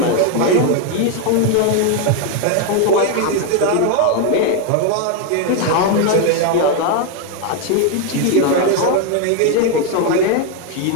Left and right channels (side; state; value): both; different; correlation 0.01